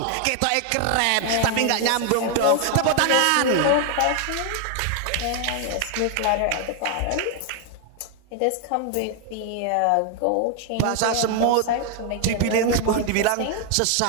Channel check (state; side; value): different; both; correlation 0.00